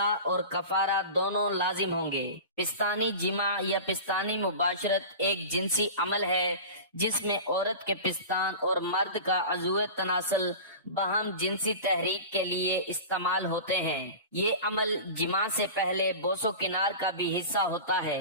اور کفارہ دونوں لازم ہوں گے۔ پستانی جماع یا پستانی مباشرت ایک جنسی عمل ہے جس میں عورت کے پستان اور مرد کا عضو تناسل باہم جنسی تحریک کے لیے استعمال ہوتے ہیں۔ یہ عمل جماع سے پہلے بوس و کنار کا بھی حصہ ہوتا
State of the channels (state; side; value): inverted; both; correlation -0.32